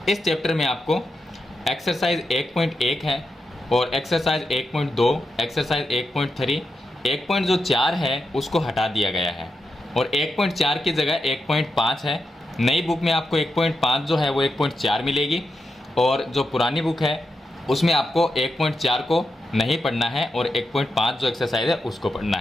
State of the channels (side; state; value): both; normal; correlation 0.87